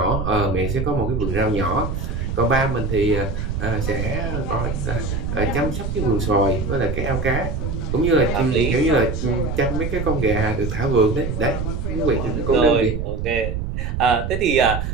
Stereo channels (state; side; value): noise; right; rumble, 3 dB below the sound